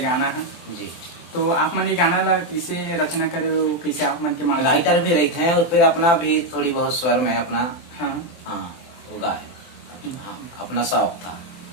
है जी। तो आप मन ये गाना ला कैसे रचना करे हो, कैसे आप मन के मान राइटर भी रहते हैं और फिर अपना भी थोड़ी बहुत स्वर में अपना हाँ वो गाए। हाँ, अपना शौक था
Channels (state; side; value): late; right; 24 ms